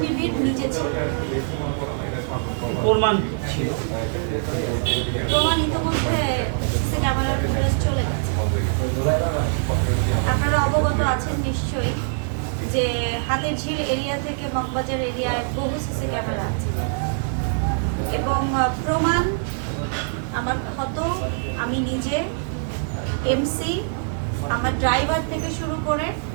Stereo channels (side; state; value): left; silent; digital silence